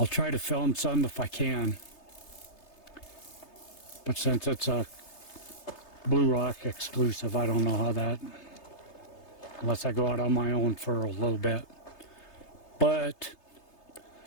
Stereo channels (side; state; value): right; late; 3.3 ms